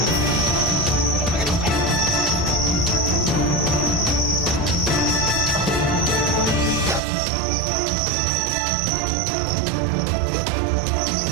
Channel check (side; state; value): left; drops out; at 7.0 s